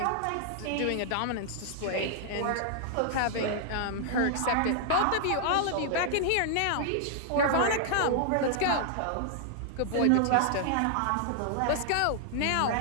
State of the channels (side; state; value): both; different; correlation -0.01